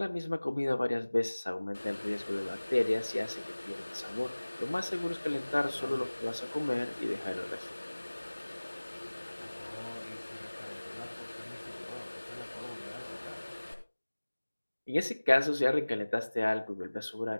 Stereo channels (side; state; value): both; inverted; correlation -1.00